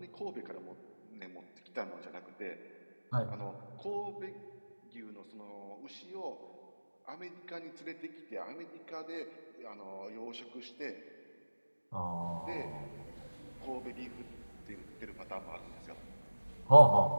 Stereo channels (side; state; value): both; inverted; correlation -1.00